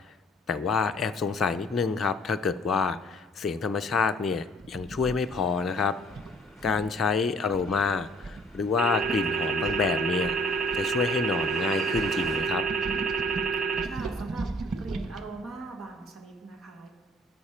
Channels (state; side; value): normal; both; correlation 0.56